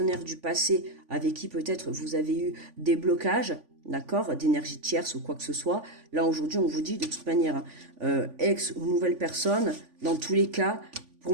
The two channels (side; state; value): left; late; 3.5 ms